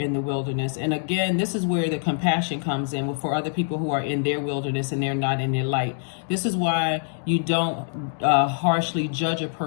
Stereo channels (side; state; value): right; silent; digital silence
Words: the wilderness. And again, this is where the compassion comes in for other people who are in their wilderness and they're not in their light. This is why you don't harshly judge a